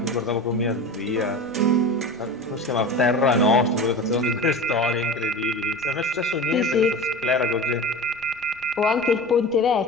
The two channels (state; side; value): noise; left; rumble, 29 dB below the sound